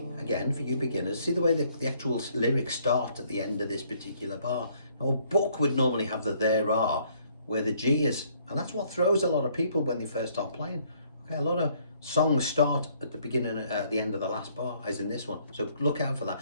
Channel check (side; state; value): both; inverted; correlation -0.65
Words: again, for you beginners, see the way the actual lyrics start at the end of this particular bar. Now, a book would normally have the there are, where the G is, and that's what throws a lot of people when they first start playing. Okay, a lot of songs start at the beginning, at the end of the last bar, as in this one. So look out for that.